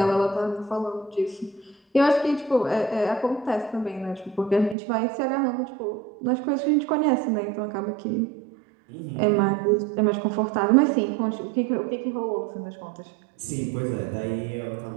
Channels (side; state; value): left; drops out; at 4.8 s